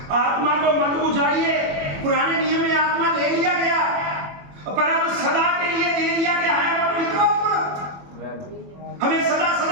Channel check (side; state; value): left; late; 21 ms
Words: आत्मा को मत बुझाइए। पुराने नियम में आत्मा ले लिया गया, पर अब सदा के लिए दे दिया गया है पवित्र आत्मा। हमें सदा